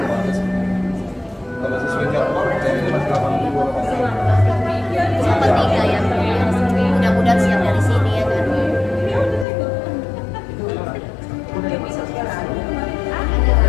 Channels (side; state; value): right; drops out; at 9.5 s